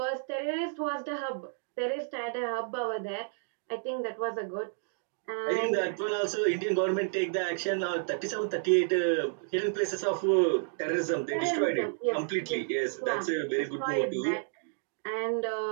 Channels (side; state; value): left; silent; digital silence